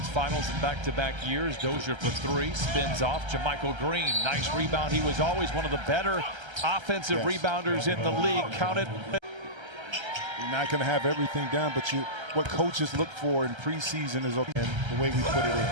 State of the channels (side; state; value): left; late; 1.3 ms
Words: finals in back-to-back years. Dozier for 3, spins off. JaMychal Green, nice rebound. He was always one of the better offensive rebounders in the league. Counted. You're not going to have everything down, but what coaches look for in preseason is okay, and the way we put it in.